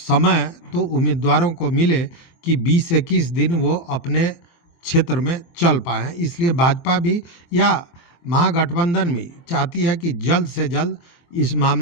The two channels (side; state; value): right; late; 23 ms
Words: तो उम्मीदवारों को मिले कि 20-21 दिन वो अपने क्षेत्र में चल पाएँ। इसलिए भाजपा भी या महागठबंधन भी चाहती है कि जल्द से जल्द इस